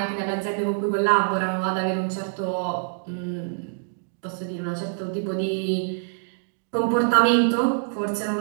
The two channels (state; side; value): silent; left; digital silence